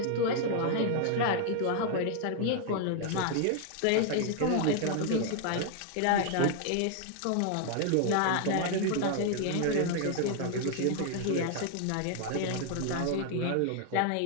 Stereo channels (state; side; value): different; both; correlation 0.00